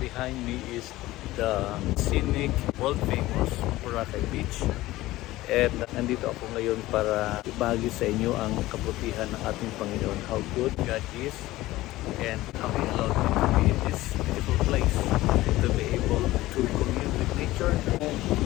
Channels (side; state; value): right; quieter; 17.3 dB